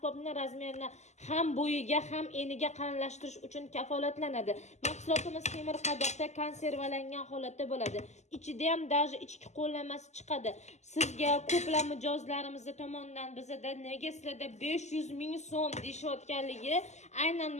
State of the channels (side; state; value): right; late; 0.33 ms